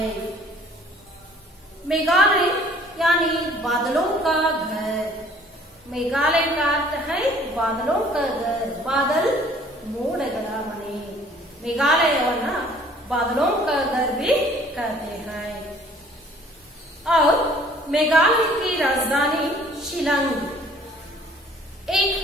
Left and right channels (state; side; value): normal; both; correlation 0.55